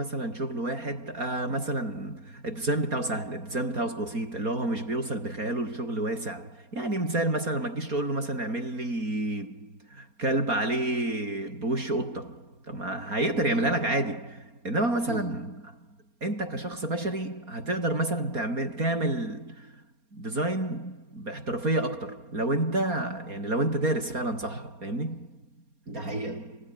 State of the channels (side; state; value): left; late; 4.3 ms